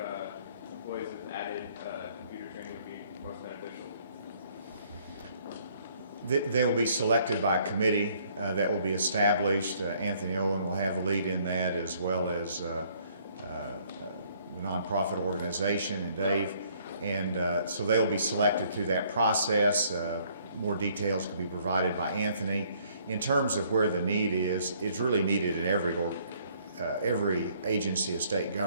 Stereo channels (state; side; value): inverted; both; correlation -0.63